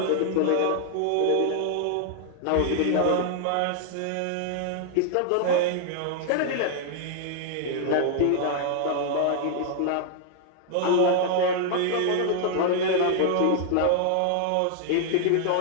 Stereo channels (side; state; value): both; different; correlation 0.00